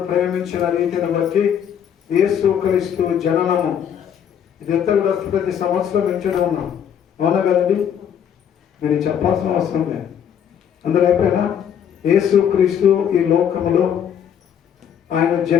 ప్రేమించిన రీతిని బట్టి యేసుక్రీస్తు జననము ఇదంతా కూడా ప్రతి సంవత్సరం వింటూనే ఉన్నాం. అవునా కదండి? మీరు చెప్పాల్సిన అవసరం లేదు. అందరూ అయిపోయినా యేసుక్రీస్తు ఈ లోకములో ఆయన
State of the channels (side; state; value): right; quieter; 8.7 dB